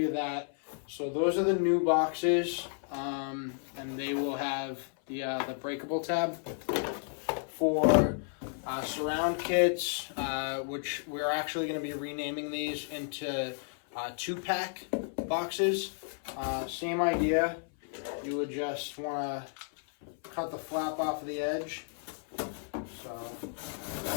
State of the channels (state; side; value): silent; right; 56 dB below the other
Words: that. So those are the new boxes, and they will have the breakable tab for surround kits, which we're actually going to be renaming these into 2-pack boxes. Same idea. You would just want to cut the flap off of the edge. So